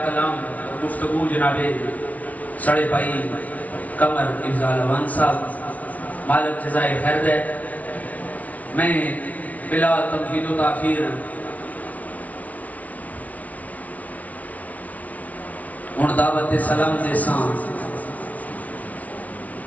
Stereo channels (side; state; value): right; late; 0.070 ms